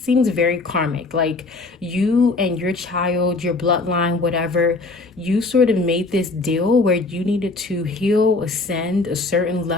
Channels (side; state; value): right; quieter; 3.4 dB